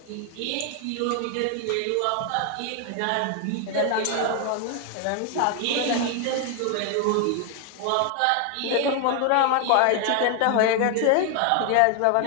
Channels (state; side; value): different; both; correlation 0.00